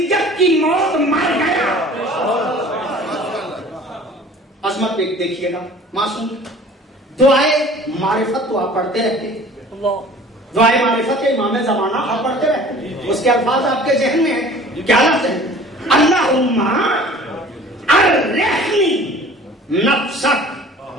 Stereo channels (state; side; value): normal; both; correlation 0.46